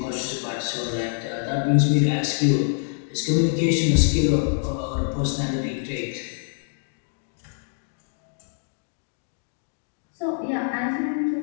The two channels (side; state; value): right; silent; digital silence